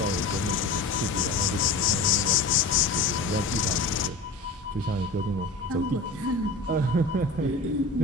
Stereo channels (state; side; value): quieter; right; 3.5 dB